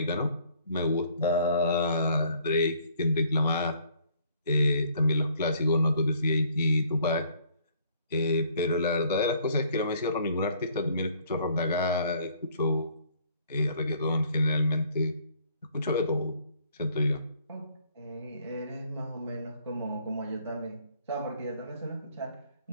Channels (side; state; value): both; inverted; correlation -0.61